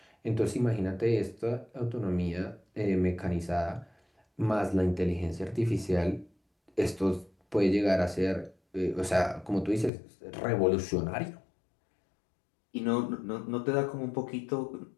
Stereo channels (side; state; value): right; drops out; at 9.9 s